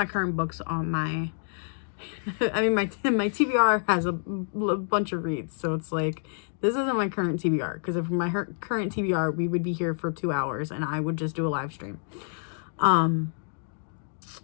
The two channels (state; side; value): silent; right; digital silence